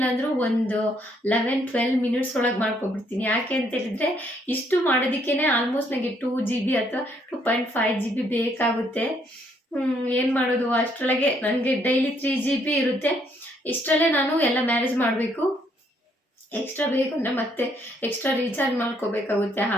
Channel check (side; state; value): both; normal; correlation 0.69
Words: ಅಂದರೂ ಒಂದು 11-12 ಮಿನಿಟ್ಸ್ ಒಳಗೆ ಮಾಡ್ಕೊಬಿಡ್ತೀನಿ. ಯಾಕೆ ಅಂತ ಹೇಳಿದರೆ ಇಷ್ಟು ಮಾಡೋದಕ್ಕೇ ಆಲ್ಮೋಸ್ಟ್ ನನಗೆ 2 GB ಅಥವಾ 2.5 GB ಬೇಕಾಗುತ್ತೆ. ಏನು ಮಾಡೋದು, ಅಷ್ಟರೊಳಗೆ ನನಗೆ ಡೈಲಿ 3 GB ಇರುತ್ತೆ. ಇಷ್ಟರಲ್ಲೇ ನಾನು ಎಲ್ಲ ಮ್ಯಾನೇಜ್ ಮಾಡಬೇಕು. ಎಕ್ಸ್ಟ್ರಾ ಬೇಕು ಅಂದರೆ ಮತ್ತೆ ಎಕ್ಸ್ಟ್ರಾ ರೀಚಾರ್ಜ್ ಮಾಡ್ಕೋಬೇಕಾಗುತ್ತೆ.